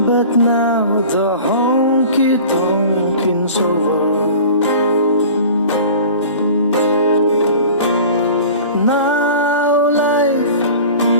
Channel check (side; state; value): both; inverted; correlation -0.40